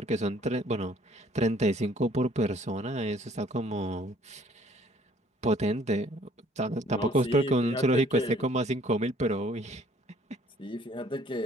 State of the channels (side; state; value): both; normal; correlation 0.59